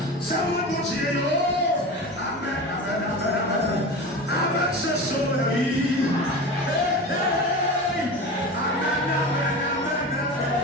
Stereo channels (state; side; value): normal; both; correlation 0.29